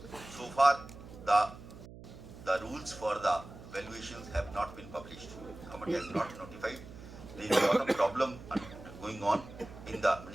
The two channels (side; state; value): right; noise; hum, 16 dB below the sound